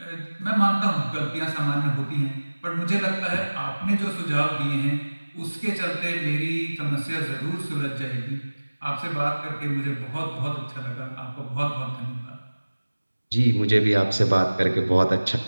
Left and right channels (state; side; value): inverted; both; correlation -1.00